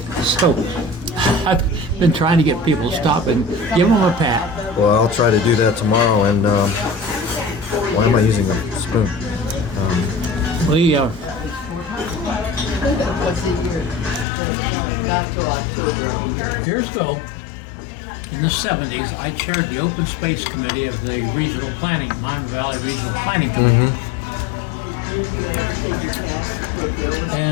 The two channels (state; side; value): drops out; right; at 14.2 s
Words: So I've been trying to get people to stop and give them a pat. Well, I'll try to do that tomorrow. And why am I using a spoon? We years ago, in the 70s, I chaired the Open Space Committee of the Regional Planning, Miami Valley Regional Planning Committee.